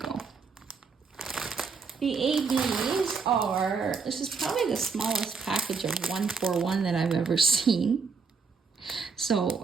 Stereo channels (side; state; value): left; quieter; 5.2 dB